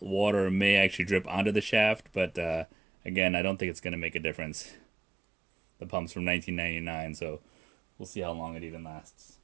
water may actually drip onto the shaft, but again, I don't think it's going to make a difference. The pump's from 1999, so we'll see how long it even lasts.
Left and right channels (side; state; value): left; drops out; at 2.7 s